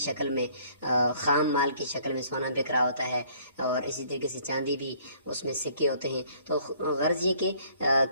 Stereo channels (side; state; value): both; inverted; correlation -0.60